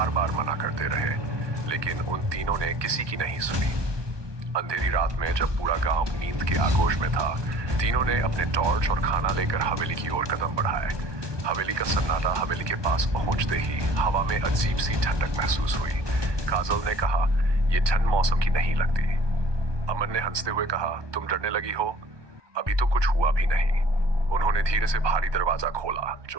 बार मना करते रहे, लेकिन उन तीनों ने किसी की नहीं सुनी। अंधेरी रात में जब पूरा गांव नींद के आगोश में था, तीनों ने अपने टॉर्च और खाना लेकर हवेली की ओर कदम बढ़ाए। हवेली का सन्नाटा हवेली के पास पहुंचते ही हवा में अजीब सी ठंडक महसूस हुई। काजल ने कहा, यह ठंड मौसम की नहीं लगती। अमन ने हंसते हुए कहा, तुम डरने लगी हो? अभी तो कुछ हुआ भी नहीं। उन्होंने धीरे से भारी दरवाजा खोला,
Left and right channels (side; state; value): left; late; 1.2 ms